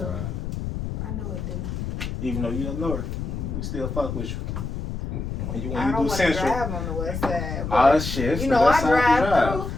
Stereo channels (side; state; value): left; noise; rumble, 5 dB below the sound